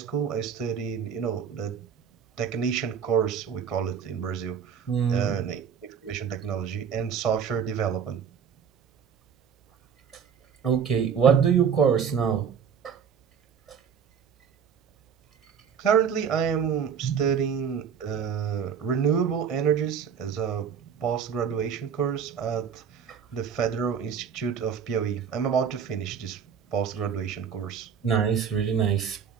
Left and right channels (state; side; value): quieter; left; 7.3 dB